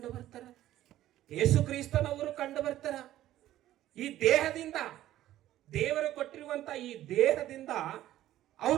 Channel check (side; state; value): left; quieter; 13.7 dB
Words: ಬರ್ತಾರ, ಯೇಸು ಕ್ರಿಸ್ತನವರು ಕಂಡು ಬರ್ತಾರ. ಈ ದೇಹದಿಂದ, ದೇವರು ಕೊಟ್ಟಿರುವಂತ ಈ ದೇಹದಿಂದ